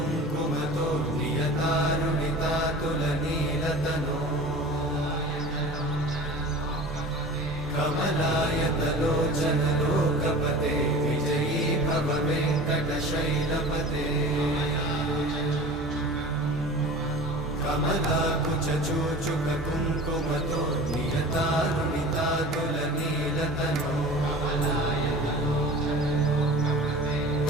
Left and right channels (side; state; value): both; normal; correlation 0.38